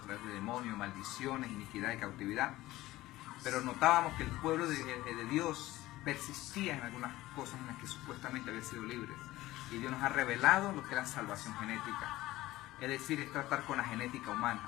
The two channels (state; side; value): quieter; right; 17.0 dB